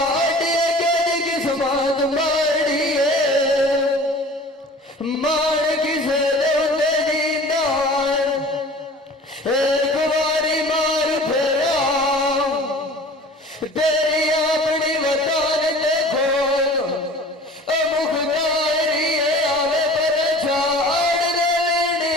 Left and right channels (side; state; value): both; normal; correlation 0.44